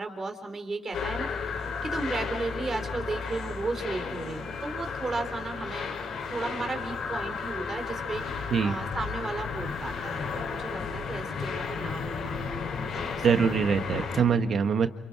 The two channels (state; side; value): normal; both; correlation 0.75